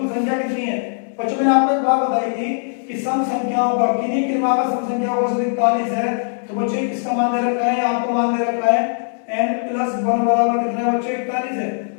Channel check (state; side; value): silent; right; 66 dB below the other